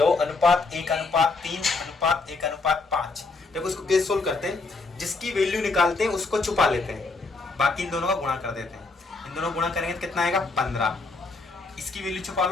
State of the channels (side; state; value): right; quieter; 3.7 dB